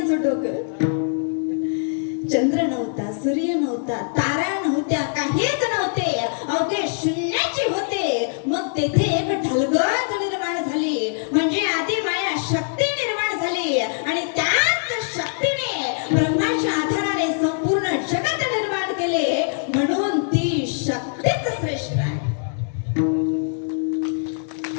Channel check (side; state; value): right; silent; digital silence